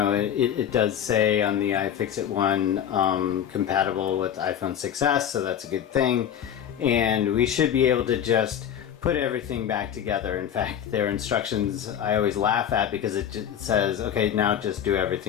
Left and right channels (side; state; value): right; quieter; 9.4 dB